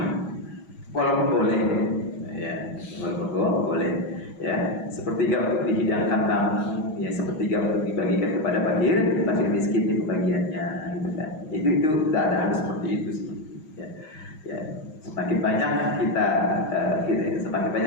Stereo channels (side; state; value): right; late; 6.3 ms